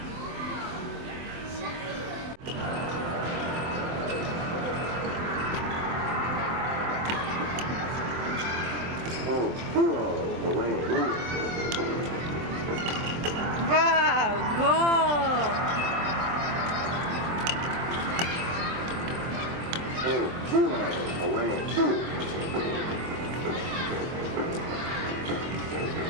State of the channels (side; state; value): left; late; 24 ms